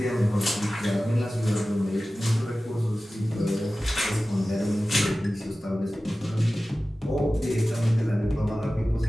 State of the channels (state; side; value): normal; both; correlation 0.96